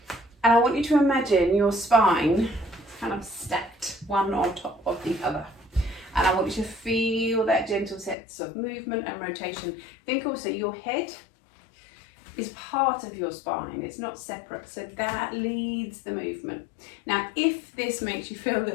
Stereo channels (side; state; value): right; drops out; at 8.2 s